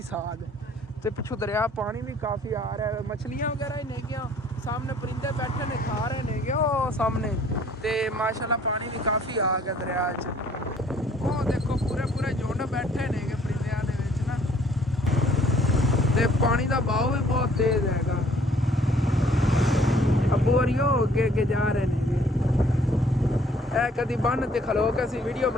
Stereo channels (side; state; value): both; normal; correlation 0.59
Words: साग ते पिछू दरिया पानी भी काफ़ी आ रहा है, मछलियां वगैरह ही नहीं गया, सामने परिंदे बैठे ने खा रहे ने गए वो सामने ते माशाल्लाह पानी भी काफ़ी आ गया दरिया च। वो देखो पूरे झुंड बैठे ने परिंदियां दे विच ना, ते पानी का बहाव भी बहुत तेज हैगा। अबू होरियो अगे जा रहे ने कभी बन ते खलो के असी वीडियो